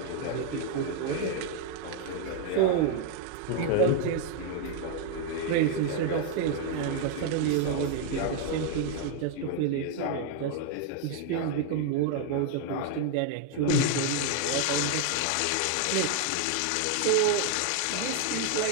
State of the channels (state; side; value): different; both; correlation 0.01